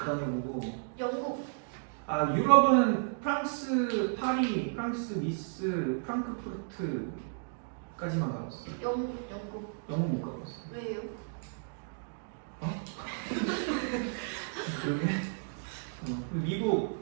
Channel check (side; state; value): left; silent; digital silence